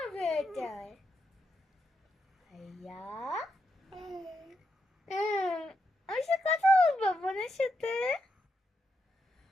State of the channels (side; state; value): both; normal; correlation 0.83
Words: বেটার। ভাইয়া আমার সাথে কথা বলবো বোনের সাথে,